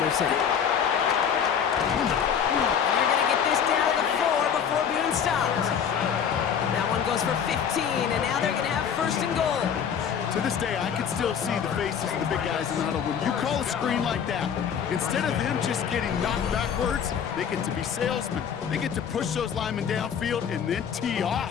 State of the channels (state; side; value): quieter; right; 7.8 dB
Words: And they're going to get this down to the 4 before being stopped. That one goes for 15, and now they're going to have 1st and goal. To this day, I can still see the faces of the big guys in the huddle. When you call a screen like that, instead of them just getting knocked backwards, they get to be salesmen. They get to push those linemen downfield and then tee